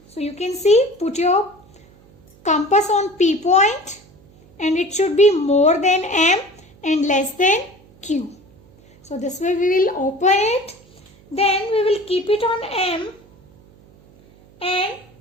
So you can see, put your compass on P point and it should be more than M and less than Q. So this way we will open it. Then we will keep it on M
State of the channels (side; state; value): right; noise; hum, 27 dB below the sound